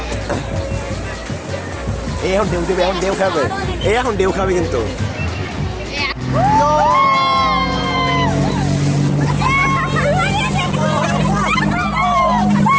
এই এখন ঢেউ দেবে, এখন ঢেউ খাবে, এখন ঢেউ খাবে কিন্তু।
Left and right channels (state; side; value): identical; both; correlation 1.00